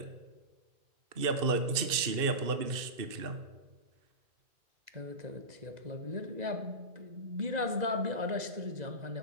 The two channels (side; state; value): left; late; 2.6 ms